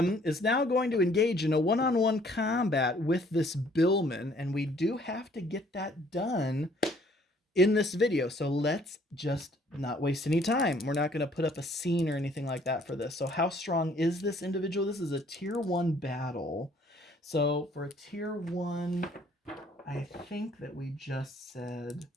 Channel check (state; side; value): normal; both; correlation 0.61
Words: is now going to engage in a one-on-one combat with this billman. And we do have to get that done in this video. So let's just not waste any time. We're not going to put up a scene or anything like that for this. So how strong is this individual? This is a tier 1 battle. So for a tier 1, I think that we just said